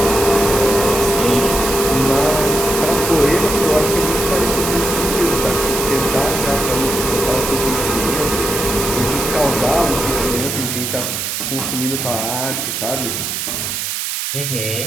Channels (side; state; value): right; noise; hiss, 3 dB below the sound